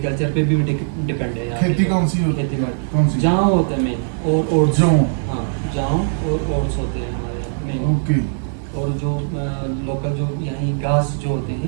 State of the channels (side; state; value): left; silent; digital silence